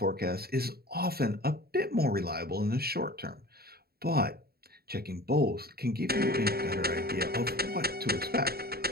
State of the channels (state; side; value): late; left; 0.45 ms